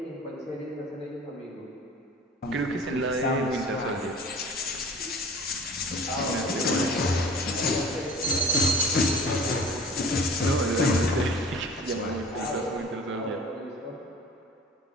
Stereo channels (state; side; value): normal; both; correlation 0.45